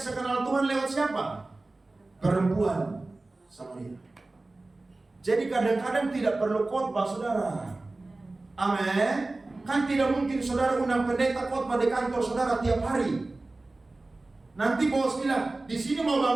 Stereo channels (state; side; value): quieter; left; 3.1 dB